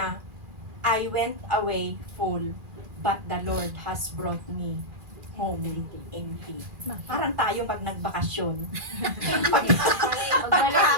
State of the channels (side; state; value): left; late; 2.4 ms